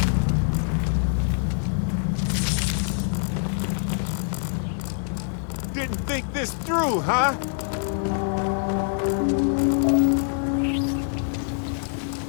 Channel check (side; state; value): right; silent; digital silence